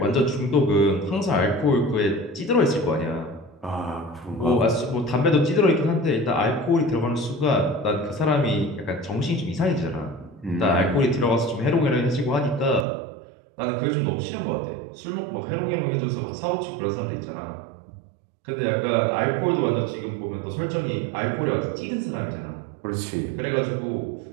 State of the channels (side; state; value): left; drops out; at 12.9 s